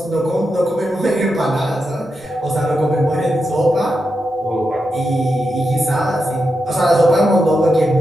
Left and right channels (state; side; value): normal; both; correlation 0.87